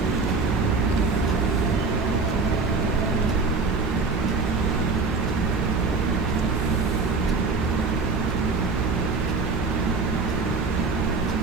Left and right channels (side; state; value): left; quieter; 4.2 dB